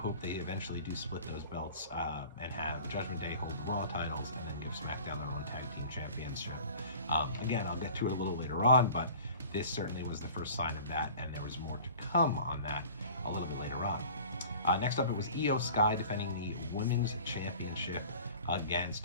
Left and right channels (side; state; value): both; inverted; correlation -0.44